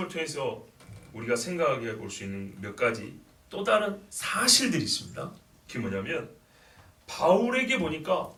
통해서 우리가 생각하게 볼 수 있는 몇 가지 또 다른 사실들이 있습니다. 그게 뭐냐면 바울에게 보니까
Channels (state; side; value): identical; both; correlation 1.00